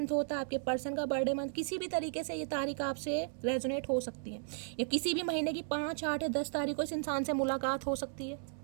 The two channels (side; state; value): left; silent; 54 dB below the other